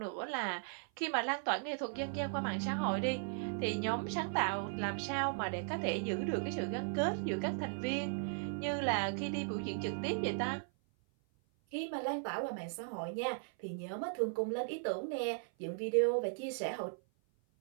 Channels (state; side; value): silent; left; 53 dB below the other